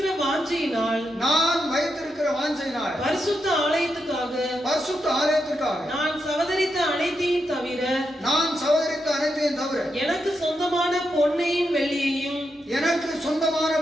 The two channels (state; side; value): normal; both; correlation 0.84